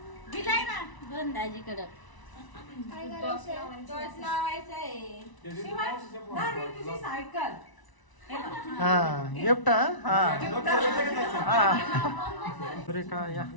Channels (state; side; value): late; right; 1.0 ms